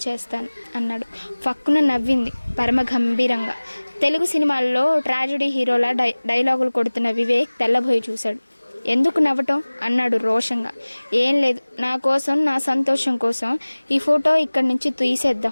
చేస్తాను అన్నాడు. ఫక్కున నవ్వింది పరమ గంభీరంగా. తెలుగు సినిమాల్లో ట్రాజడీ హీరోల డైలాగులు కొడుతున్న వివేక్ తెల్లబోయి చూశాడు. ఎందుకు నవ్వటం అన్నాడు రోషంగా. ఏం లేదు, నా కోసం, నా సంతోషం కోసం ఈ ఫోటో ఇక్కడి నుంచి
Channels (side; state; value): both; inverted; correlation -1.00